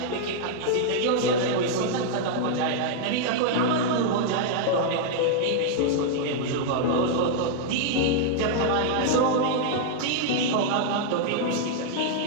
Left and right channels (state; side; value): different; both; correlation -0.01